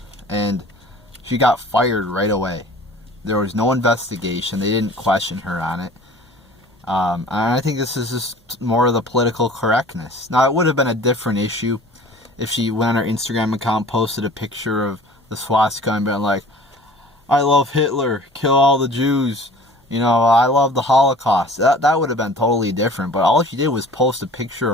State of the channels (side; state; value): both; normal; correlation 0.46